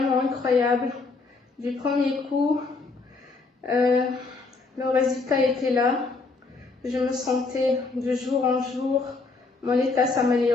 incroyable. Du premier coup, le résultat était là. Je me sentais de jour en jour, mon état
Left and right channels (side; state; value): right; quieter; 4.0 dB